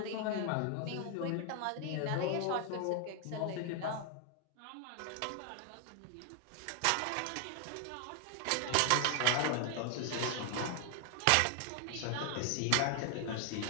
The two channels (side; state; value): both; different; correlation 0.00